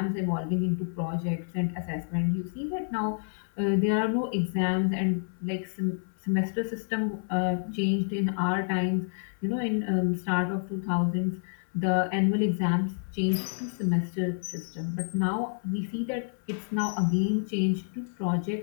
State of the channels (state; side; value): silent; right; 59 dB below the other